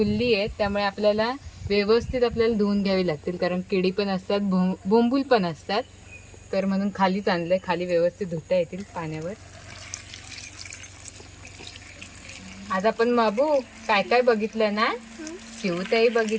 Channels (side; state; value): both; identical; correlation 1.00